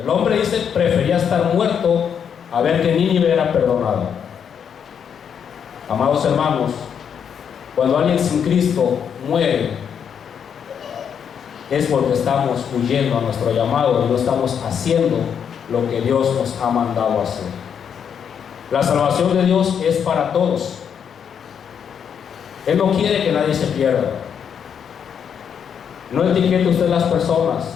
hombre dice, prefería estar muerto a ver que Nínive era perdonado. Amados hermanos, cuando alguien sin Cristo muere, es porque estamos huyendo a nuestro llamado y no estamos haciendo lo que Dios nos ha mandado hacer. La salvación de Dios es para todos. Él no quiere que nadie se pierda. No etiquete usted las personas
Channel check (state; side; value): quieter; right; 7.7 dB